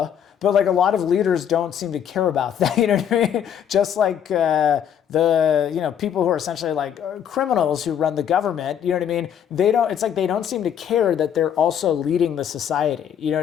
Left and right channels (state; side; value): quieter; right; 9.0 dB